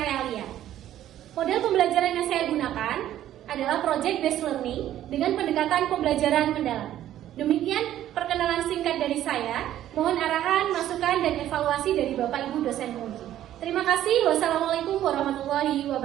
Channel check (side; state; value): left; quieter; 12.3 dB